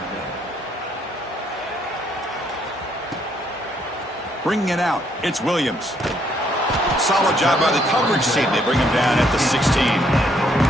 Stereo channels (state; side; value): normal; both; correlation 0.70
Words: Bringing it out, it's Williams. Solid job by the coverage team. They bring him down at the 16.